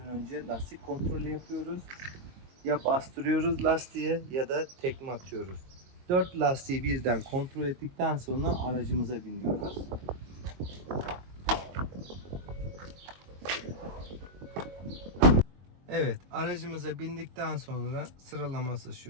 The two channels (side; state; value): left; late; 22 ms